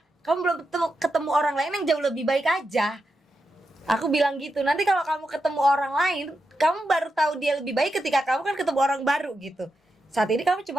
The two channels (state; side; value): normal; both; correlation 0.87